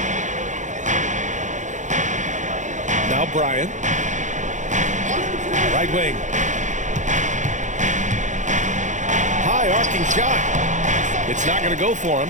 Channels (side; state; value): left; late; 0.35 ms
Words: Now Bryant. Right wing. High arcing shot. It's not going to go for him.